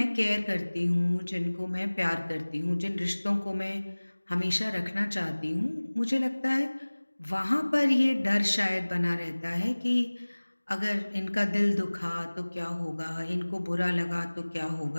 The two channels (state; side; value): inverted; both; correlation -1.00